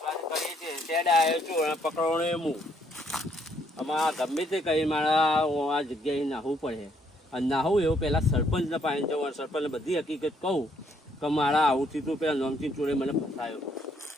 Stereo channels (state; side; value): normal; both; correlation 0.70